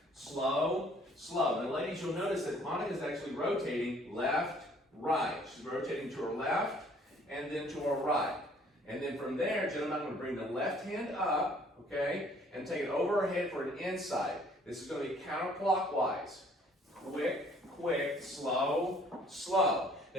slow, slow. Now, ladies, you'll notice that Monica's actually rotating left, right. She's rotating to her left and then to her right. And then from there, gentlemen, I'm going to bring the left hand up, okay, and take it over her head for an inside. This is going to be counterclockwise. Quick, quick, slow, slow.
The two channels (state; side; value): normal; both; correlation 0.58